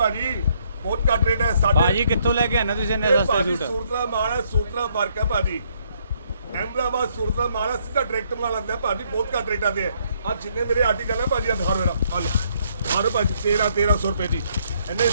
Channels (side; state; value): both; inverted; correlation -0.70